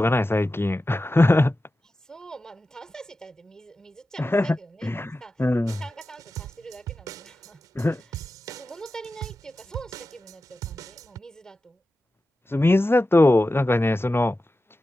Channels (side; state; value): both; normal; correlation 0.93